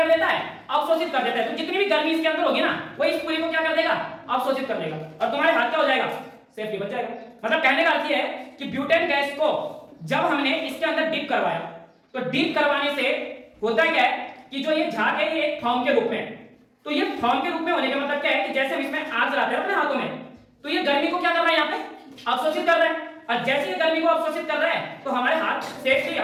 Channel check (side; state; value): both; identical; correlation 1.00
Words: देता है? अवशोषित कर देता है। तो जितनी भी गर्मी इसके अंदर होगी ना, वो इस पूरी को क्या कर देगा? अवशोषित कर देगा और तुम्हारे हाथ क्या हो जाएगा? सेफली बच जाएगा। मतलब कहने का अर्थ ये है कि ब्यूटेन गैस को जब हमने इसके अंदर डीप करवाया तो डीप करवाने से होता क्या है कि जो ये झाग है ये एक फॉर्म के रूप में है। तो ये फॉर्म के रूप में होने का मतलब क्या है कि जैसे हम इसमें आग जलाते हैं अपने हाथों में, तो ये गर्मी को क्या कर रहा है? यहाँ पे अवशोषित कर रहा है। और जैसे ये गर्मी को अवशोषित कर रहा है तो हमारे हाथ सेफली